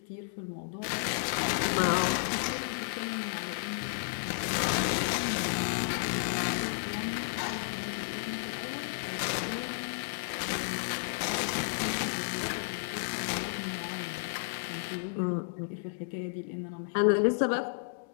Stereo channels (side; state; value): right; silent; digital silence